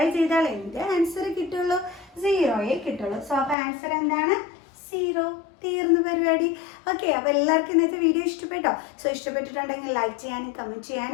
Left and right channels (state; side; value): drops out; right; at 3.6 s